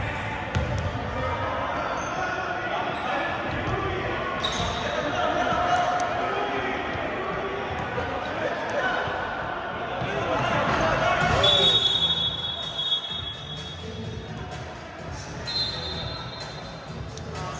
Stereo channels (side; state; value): both; identical; correlation 1.00